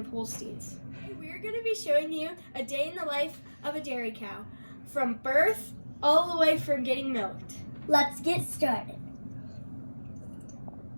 Holsteins. We're going to be showing you a day in the life of a dairy cow, from birth all the way from getting milked. let's get started.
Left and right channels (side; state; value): both; inverted; correlation -1.00